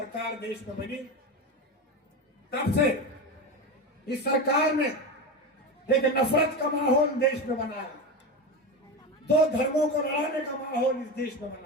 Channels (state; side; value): normal; both; correlation 0.20